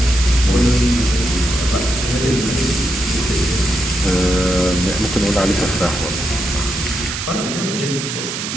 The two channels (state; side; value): noise; right; hiss, 5 dB below the sound